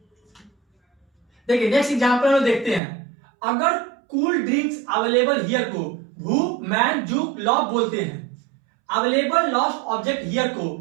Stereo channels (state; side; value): drops out; left; at 2.8 s